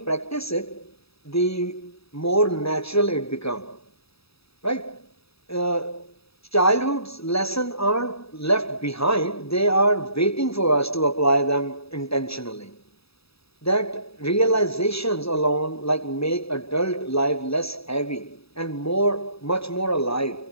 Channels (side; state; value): right; late; 0.77 ms